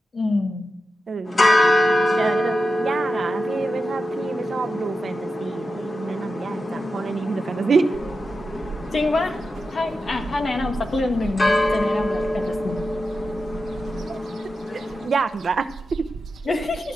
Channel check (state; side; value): normal; both; correlation 0.90